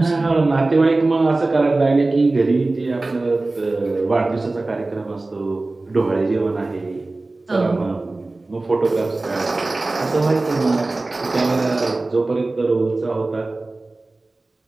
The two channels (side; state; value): left; quieter; 3.1 dB